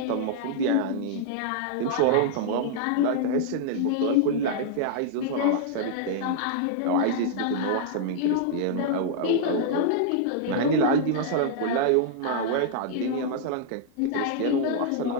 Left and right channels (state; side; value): different; both; correlation -0.01